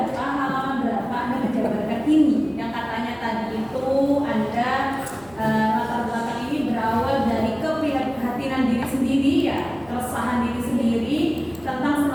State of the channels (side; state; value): left; noise; hum, 24 dB below the sound